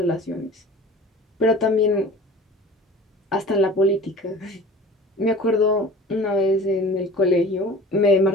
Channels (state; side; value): normal; both; correlation 0.41